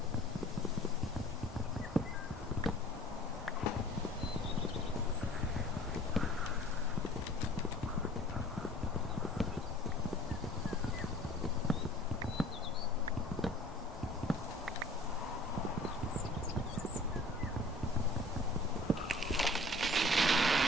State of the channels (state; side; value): normal; both; correlation 0.47